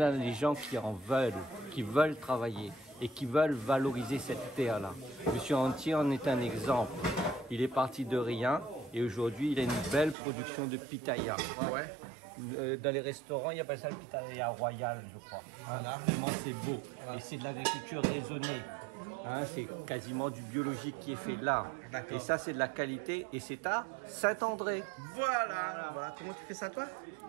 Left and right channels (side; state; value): left; drops out; at 10.2 s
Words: avons des gens qui en veulent, qui veulent travailler et qui veulent valoriser cette terre-là. Monsieur Antier en est un exemple. Il est parti de rien et aujourd'hui, il a une belle production de pitaya. Ouais. Dans les restaurants, il appelle ça le pitaya royal, je crois. Voilà. Vraiment, c'est beau. Et c'est de l'agriculture raisonnée. Hein, c'est quasiment du biologique qui est fait là. D'accord. Et ça, c'est de la qualité. Et c'est à Saint-André. Voilà. Comment tu fais ça, toi?